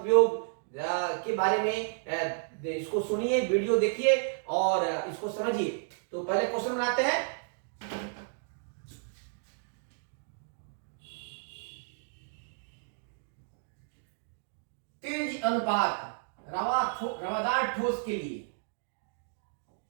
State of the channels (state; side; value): silent; left; digital silence